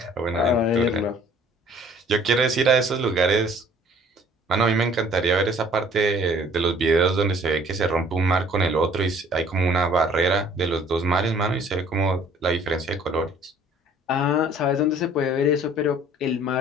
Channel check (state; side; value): normal; both; correlation 0.56